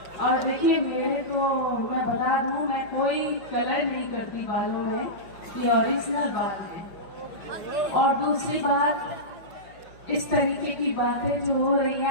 और देखिए, मेरे को मैं बता दूं, मैं कोई कलर नहीं करती बालों में, ये ओरिजिनल बाल है। और दूसरी बात, इस तरीके की बातें जो हो रही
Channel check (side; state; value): right; late; 5.5 ms